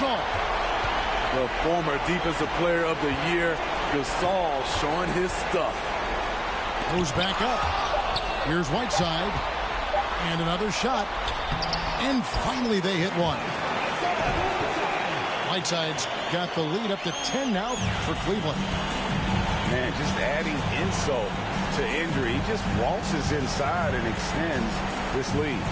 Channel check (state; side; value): identical; both; correlation 1.00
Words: The former defensive player of the year, Gasol, showing his stuff. Goes back up. Here's Whiteside. And another shot. And finally they hit one. Whiteside's got the lead up to 10 now for Cleveland. Man, just adding insult to injury. He just waltzes inside and extends this lead.